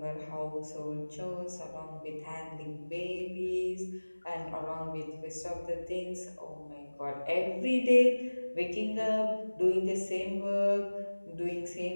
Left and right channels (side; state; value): both; inverted; correlation -1.00